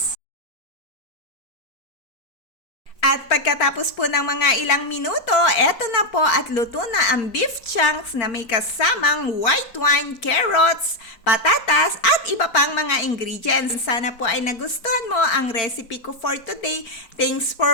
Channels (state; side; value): late; right; 4.3 ms